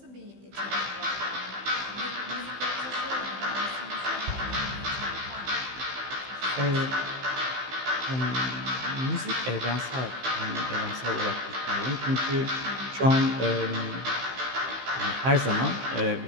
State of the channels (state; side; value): late; left; 15 ms